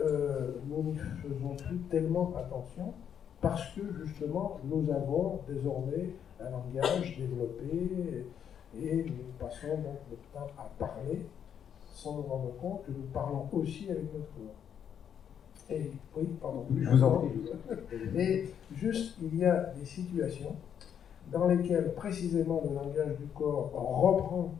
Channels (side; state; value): right; quieter; 8.6 dB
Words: nous n'y faisons plus tellement attention, parce que justement nous avons désormais un langage développé et nous passons donc notre temps à parler sans nous rendre compte que nous parlons aussi avec notre corps. Et oui, pardon. Je vous en prie. Et juste, il y a des situations dans lesquelles précisément le langage du corps reprend,